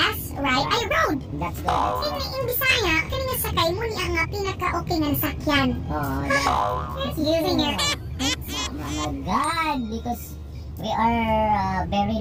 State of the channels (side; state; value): both; identical; correlation 1.00